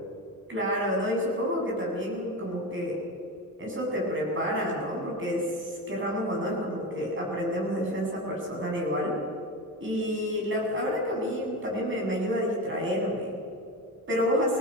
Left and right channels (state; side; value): normal; both; correlation 0.23